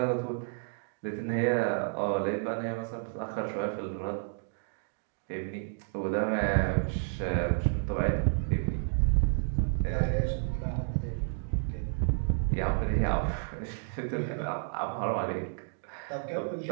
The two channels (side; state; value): left; silent; 57 dB below the other